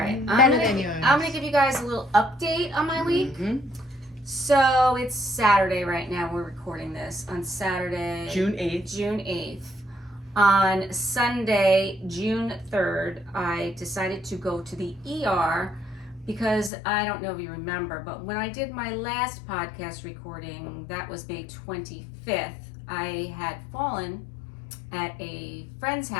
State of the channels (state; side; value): drops out; right; at 16.7 s